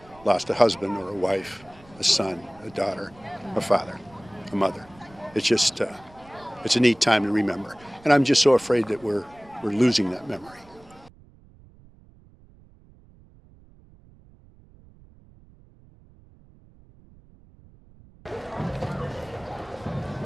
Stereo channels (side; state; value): right; noise; rumble, 25 dB below the sound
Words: lost a husband or a wife, a son, a daughter, a father, a mother. It's just, it's a neat time to remember. And I'm just so afraid that we're losing that memory.